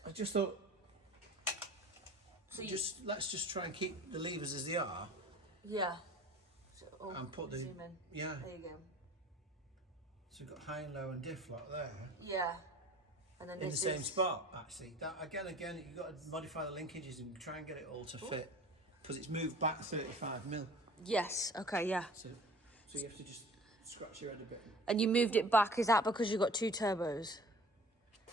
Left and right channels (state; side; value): normal; both; correlation 0.45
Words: I just thought, So let's just try and keep the levers as they are. Yeah. And put the... Zoom in. Yeah. There you go. So we've got high and low and diff lock there. Yeah. And then in the same spot, actually. That again, you've got to modify the linkages and try and get it all to fit. Because it's moved back 35mm. Yes, okay, yeah. So you have to just scratch your head a bit. And you moved it back, is that because you've got 2 turbos?